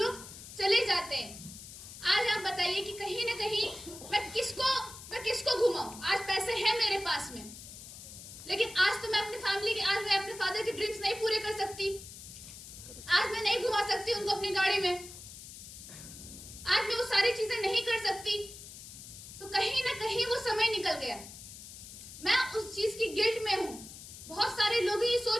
चले जाते हैं, आज आप बताइए कि कहीं ना कहीं मैं किसको घुमाऊं? आज पैसे हैं मेरे पास में, लेकिन आज तो मैं अपनी फैमिली के, आज मैं अपने फादर के ड्रीम्स नहीं पूरे कर सकती, आज मैं नहीं घुमा सकती उनको अपनी गाड़ी में, आज मैं वो सारी चीजें नहीं कर सकती। तो कहीं ना कहीं वो समय निकल गया, मैं उस चीज की गिल्ट में हूं। बहुत सारे लोग ये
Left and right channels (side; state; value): left; noise; hiss, 14 dB below the sound